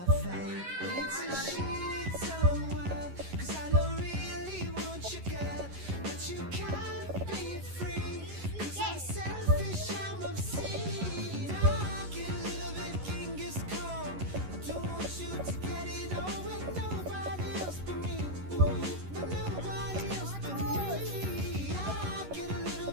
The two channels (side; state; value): left; late; 11 ms